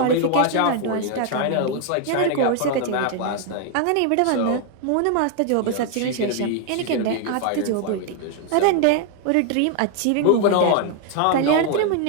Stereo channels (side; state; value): both; different; correlation 0.00